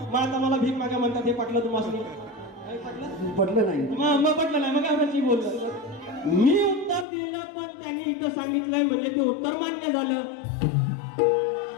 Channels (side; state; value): right; drops out; at 7.1 s